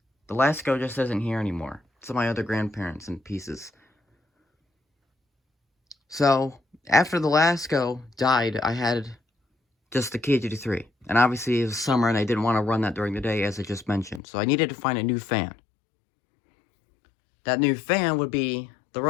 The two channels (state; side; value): drops out; right; at 14.2 s